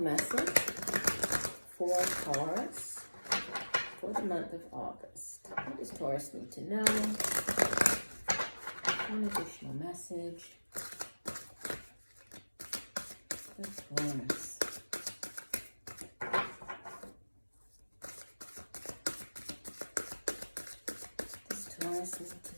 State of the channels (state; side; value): inverted; both; correlation -1.00